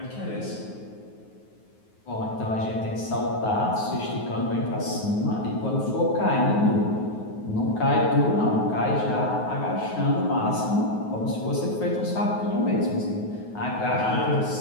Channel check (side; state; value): right; late; 9.4 ms